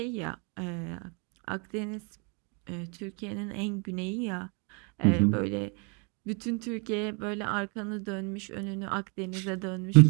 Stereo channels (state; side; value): quieter; left; 34.7 dB